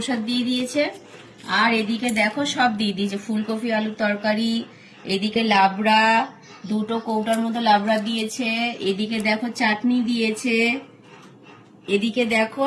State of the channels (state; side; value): identical; both; correlation 1.00